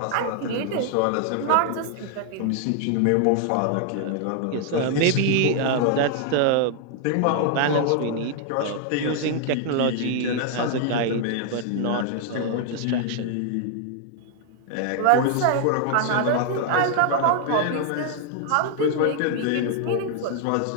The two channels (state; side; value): different; both; correlation 0.00